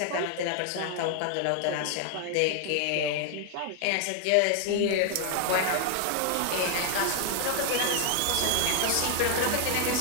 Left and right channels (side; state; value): both; different; correlation 0.00